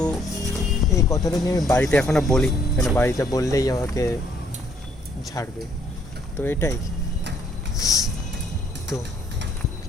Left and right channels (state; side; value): normal; both; correlation 0.66